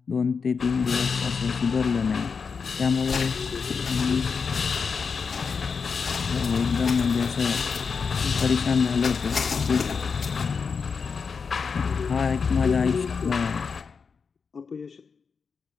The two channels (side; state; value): right; quieter; 5.5 dB